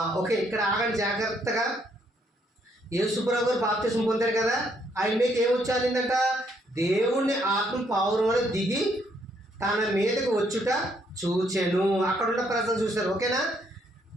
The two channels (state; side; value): normal; both; correlation 0.71